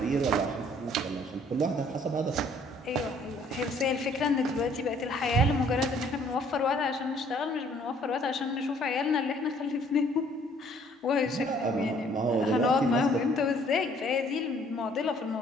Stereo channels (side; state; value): both; normal; correlation 0.60